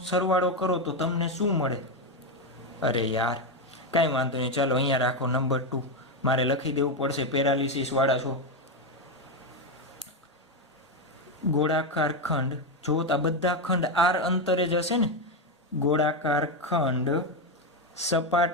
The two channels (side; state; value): both; normal; correlation 0.08